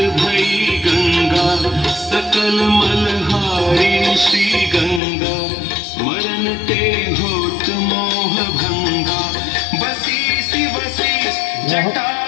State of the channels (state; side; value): drops out; right; at 5.0 s